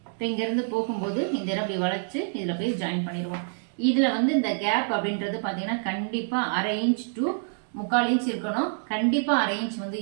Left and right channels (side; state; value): left; silent; digital silence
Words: இப்ப இங்க இருந்து போகும்போது இந்த இடம் இப்படி வளைச்சு இதுல போய் ஜாயின் பண்ணிடுவோம். இதுல வந்து இந்த கேப் அப்படின்றது பாத்தீங்கன்னா கண்டிப்பா 1/2 இன்ச் டு 3/4 இன்ச் இருக்கணும். கண்டிப்பா 1/2 இன்ச் வந்து